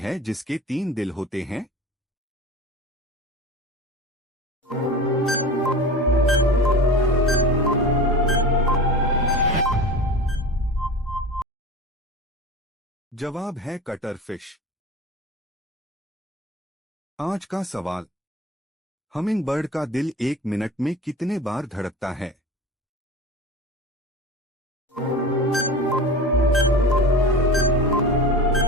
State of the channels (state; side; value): normal; both; correlation 0.34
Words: जिसके 3 दिल होते हैं? जवाब है कटर फिश। आज का सवाल, हमिंगबर्ड का दिल 1 मिनट में कितने बार धड़कता है?